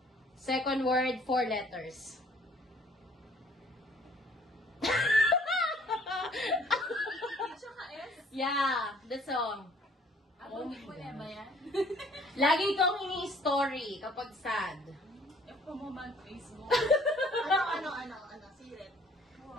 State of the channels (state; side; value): normal; both; correlation 0.58